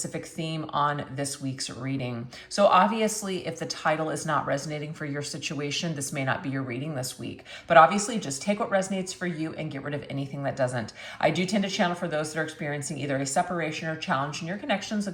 theme on this week's reading. So obviously, if the title is not resonating for your situation, this may not be your reading this week. But obviously, just take what resonates for you and get rid of anything that doesn't. I do tend to channel for those that are experiencing either a separation or challenge in your connections, so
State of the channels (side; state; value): both; identical; correlation 1.00